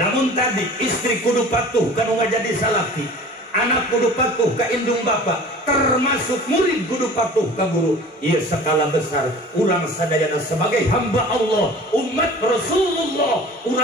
tadi istri kudu patuh kanu ngajadi salaki. Anak kudu patuh ka indung bapak, termasuk murid kudu patuh ka guru. Ieu skala besar urang sadayana sebagai hamba Allah, umat Rasulullah,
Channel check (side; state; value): both; normal; correlation 0.43